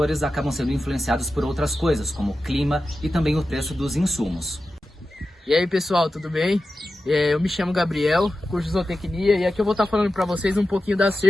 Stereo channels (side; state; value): both; normal; correlation 0.93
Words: acabam sendo influenciados por outras coisas, como o clima e também o preço dos insumos. E aí pessoal, tudo bem? Eu me chamo Gabriel, curso de zootecnia, e aqui eu vou estar falando para vocês um pouquinho da